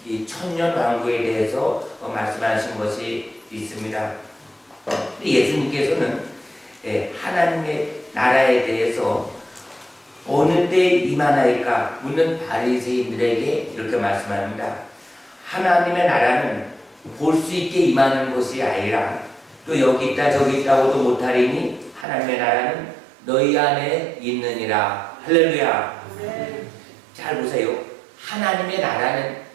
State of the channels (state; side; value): drops out; left; at 22.1 s